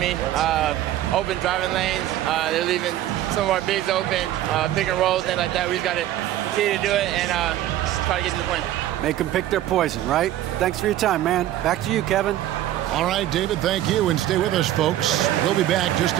Open driving lanes. They're leaving some of our bigs open, pick and rolls, things like that. We just got to continue to do it and try to get to the point. Make them pick their poison, right? Thanks for your time, man. Back to you, Kevin. All right, David, thank you. And stay with us, folks. We'll be back just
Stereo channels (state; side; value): quieter; left; 13.2 dB